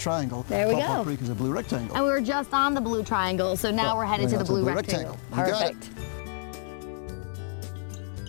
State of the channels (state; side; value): silent; right; digital silence